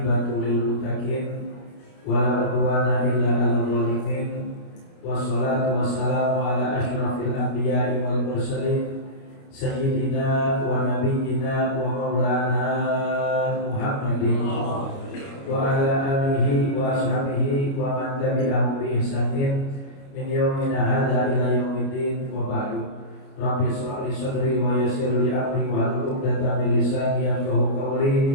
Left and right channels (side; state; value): right; late; 29 ms